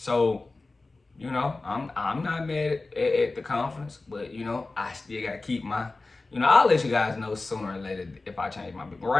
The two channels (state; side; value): quieter; right; 3.4 dB